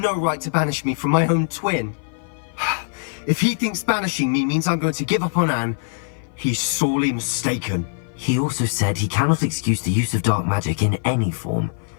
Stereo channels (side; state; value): right; silent; 56 dB below the other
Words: right to banish me from my own twin. If he thinks banishing me means I'm going to give up on Anne, he's sorely mistaken. He also said he cannot excuse the use of dark magic in any form,